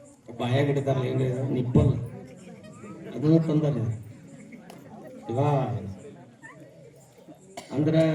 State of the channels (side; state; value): both; identical; correlation 1.00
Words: ಬಾಯಾಗಿಡ್ತಾರಲ್ಲ, ಹೆಂಗೆ ನಿಪ್ಪಲ್ ಅದನ್ನು ತಂದಾರೆ. ಇವಾ ಅಂದ್ರ